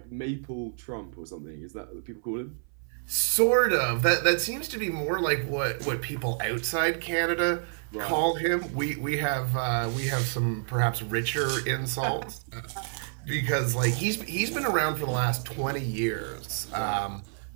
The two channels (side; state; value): left; silent; 59 dB below the other